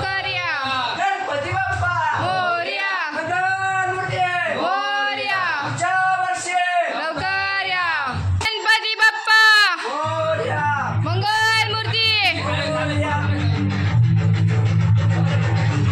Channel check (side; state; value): both; identical; correlation 1.00